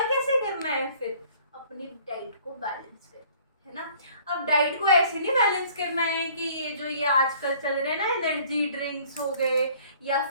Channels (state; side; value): inverted; both; correlation -0.54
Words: कैसे करना है? फिर अपनी डाइट को बैलेंस कर, है ना। अब डाइट को ऐसे नहीं बैलेंस करना है कि ये आजकल चल रहे हैं ना, एनर्जी ड्रिंक्स हो गए या